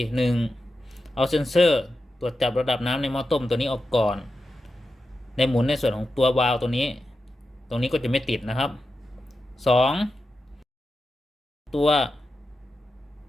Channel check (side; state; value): both; normal; correlation 0.90